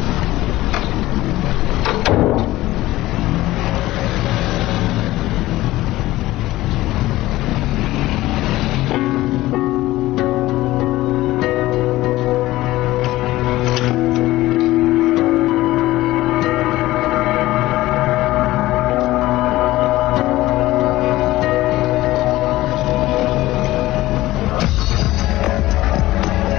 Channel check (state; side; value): quieter; right; 17.0 dB